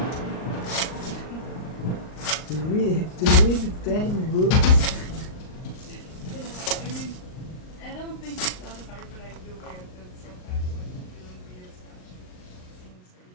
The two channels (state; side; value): late; right; 38 ms